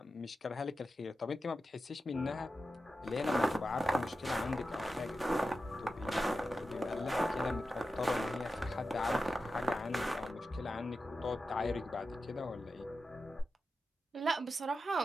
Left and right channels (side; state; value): both; normal; correlation 0.91